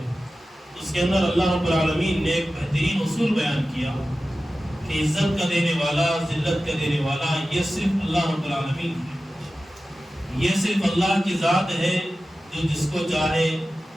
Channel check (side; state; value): both; normal; correlation 0.94